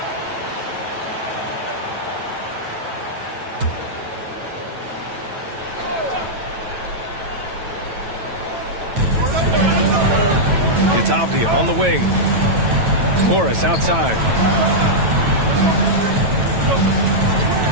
It's Avdia on the wing. Morris outside.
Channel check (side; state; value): left; late; 9.1 ms